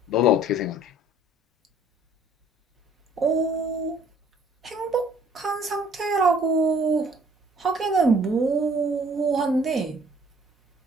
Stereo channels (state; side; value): normal; both; correlation 0.57